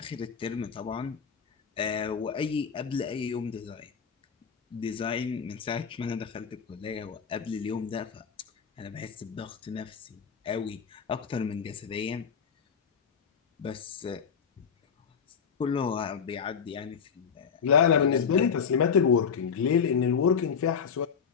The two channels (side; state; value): right; quieter; 6.6 dB